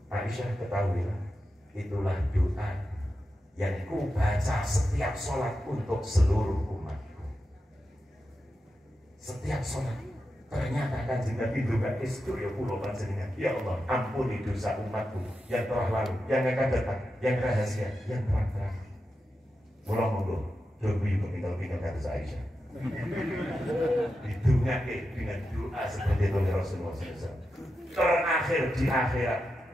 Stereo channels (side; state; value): both; normal; correlation 0.89